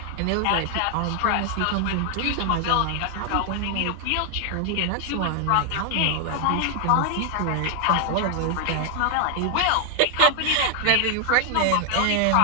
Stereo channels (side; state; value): both; different; correlation 0.00